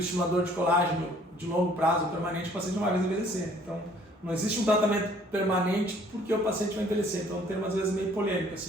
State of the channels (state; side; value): normal; both; correlation 0.58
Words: de colágeno de longo prazo permanente, o paciente não vai mais envelhecer. Então, não existe um tratamento permanente porque o paciente vai envelhecer. Então, é um termo às vezes meio polêmico,